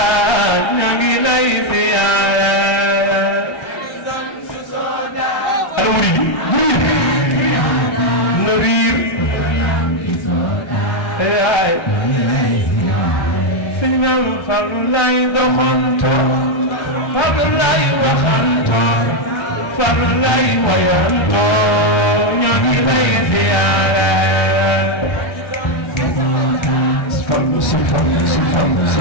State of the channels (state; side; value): late; right; 1.3 ms